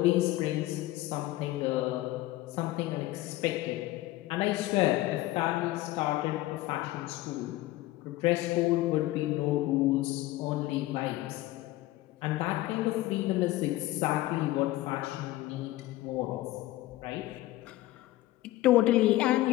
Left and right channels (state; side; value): quieter; right; 17.0 dB